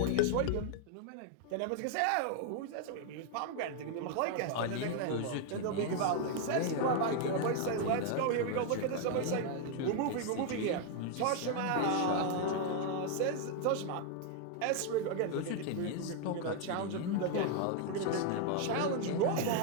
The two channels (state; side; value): different; both; correlation 0.00